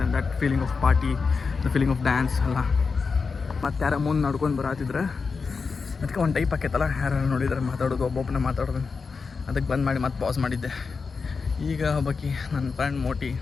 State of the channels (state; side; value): quieter; right; 4.9 dB